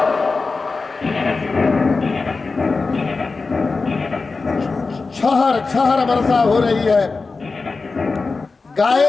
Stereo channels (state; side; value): quieter; right; 4.1 dB